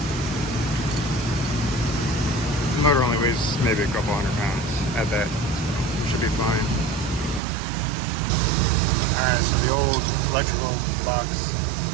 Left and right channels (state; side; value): drops out; left; at 7.4 s